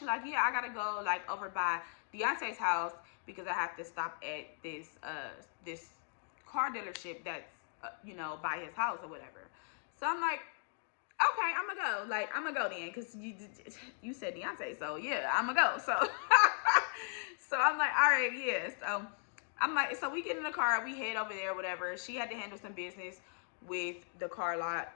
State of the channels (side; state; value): right; silent; 53 dB below the other